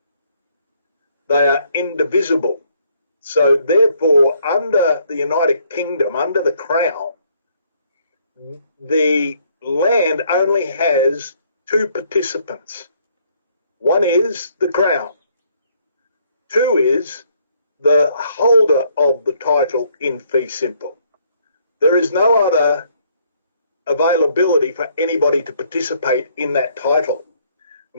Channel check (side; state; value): both; inverted; correlation -0.66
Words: They are indivisible. So therefore, under the United Kingdom, under the Crown, the land only has two participants. One is the Crown. Two is the holder of the title in fee simple. There is no other availability for anybody to participate in that title.